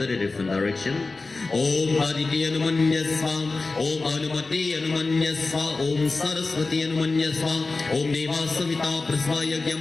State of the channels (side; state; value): right; quieter; 3.6 dB